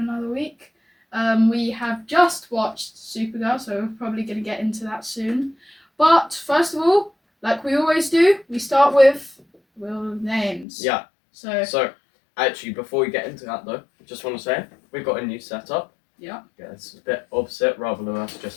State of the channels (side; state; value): right; drops out; at 10.7 s